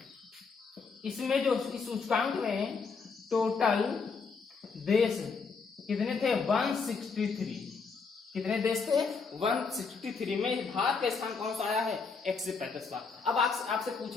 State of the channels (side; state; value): right; quieter; 5.0 dB